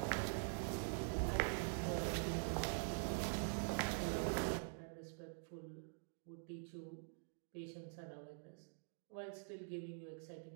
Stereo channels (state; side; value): silent; left; digital silence